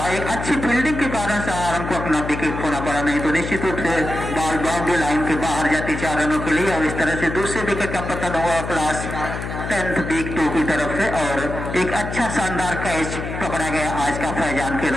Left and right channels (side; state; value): left; noise; hum, 6 dB below the sound